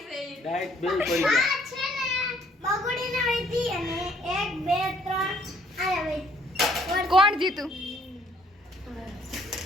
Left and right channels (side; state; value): both; normal; correlation 0.63